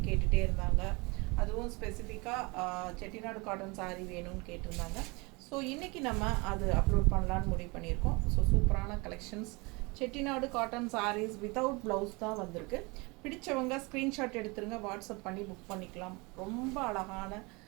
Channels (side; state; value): left; quieter; 26.9 dB